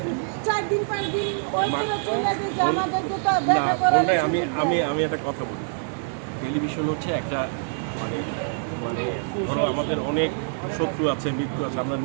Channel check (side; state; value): left; silent; digital silence